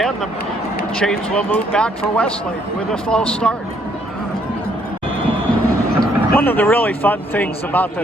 the chains will move back for Westlake with a false start. One of the really fun things about the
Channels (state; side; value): normal; both; correlation 0.68